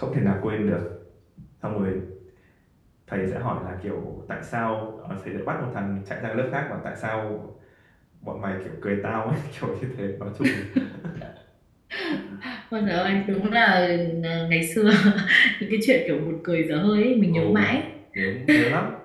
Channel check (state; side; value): identical; both; correlation 1.00